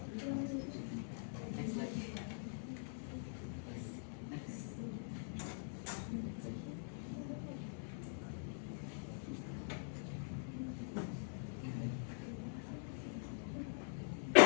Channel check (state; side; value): silent; right; digital silence